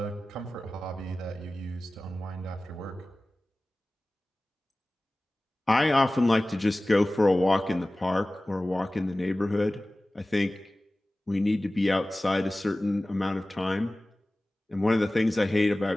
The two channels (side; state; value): both; normal; correlation 0.97